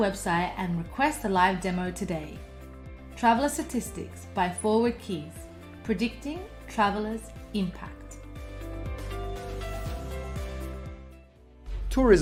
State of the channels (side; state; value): both; identical; correlation 1.00